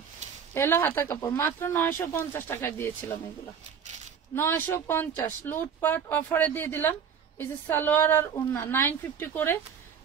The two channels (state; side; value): quieter; left; 7.3 dB